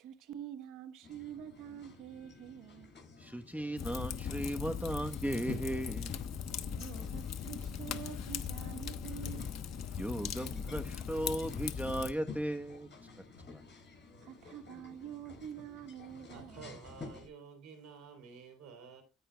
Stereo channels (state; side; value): normal; both; correlation 0.74